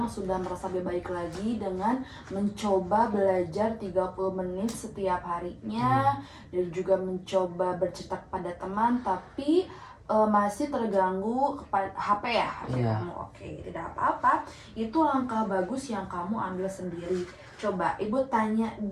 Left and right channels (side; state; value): both; identical; correlation 1.00